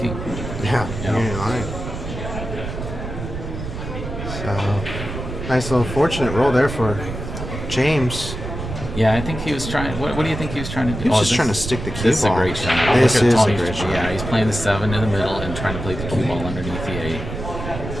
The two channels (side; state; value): right; noise; rumble, 7 dB below the sound